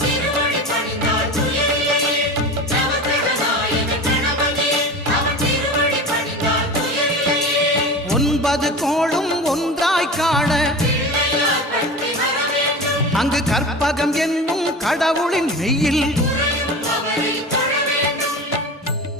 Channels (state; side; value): normal; both; correlation 0.31